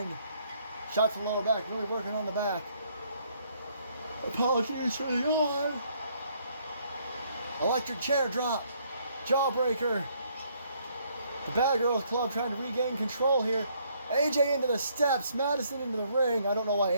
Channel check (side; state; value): both; inverted; correlation -0.67